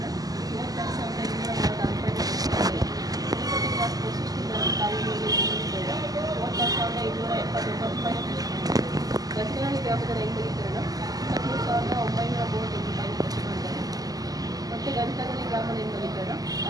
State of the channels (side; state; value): left; late; 0.18 ms